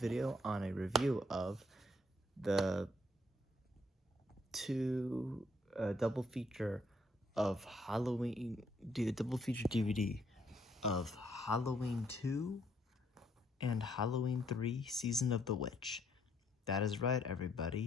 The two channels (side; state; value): both; normal; correlation 0.70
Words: video on a review of the double feature of Halloween, do a double feature DVD of Halloween 2 and Halloween 3 Season of the Witch. That is right,